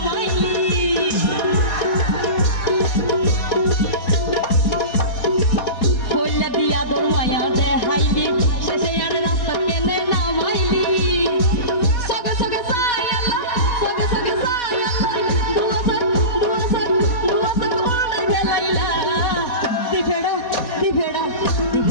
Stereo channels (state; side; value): late; right; 4.2 ms